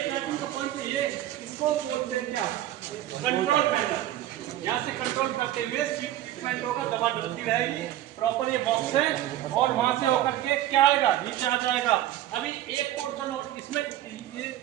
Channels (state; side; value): quieter; left; 13.3 dB